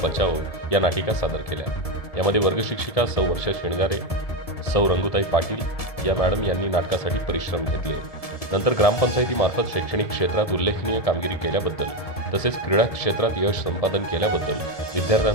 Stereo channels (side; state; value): right; late; 1.7 ms